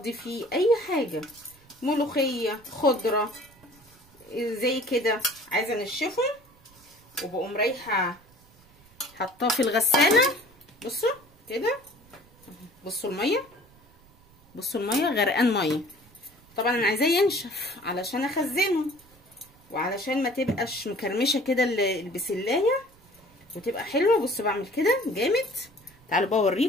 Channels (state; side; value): noise; right; rumble, 28 dB below the sound